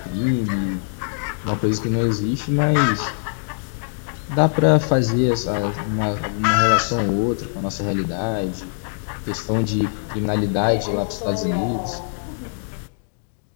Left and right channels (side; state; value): right; silent; digital silence